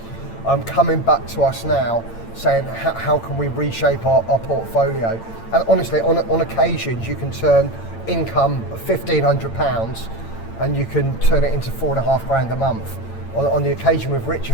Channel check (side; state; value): right; late; 8.9 ms